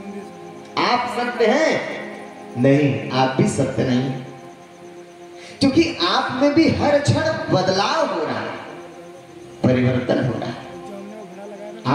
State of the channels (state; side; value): identical; both; correlation 1.00